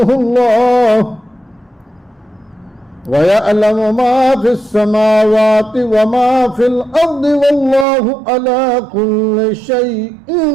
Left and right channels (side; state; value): left; drops out; at 7.9 s